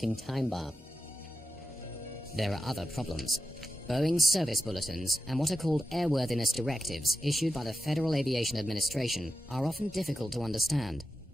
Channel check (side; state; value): both; normal; correlation 0.89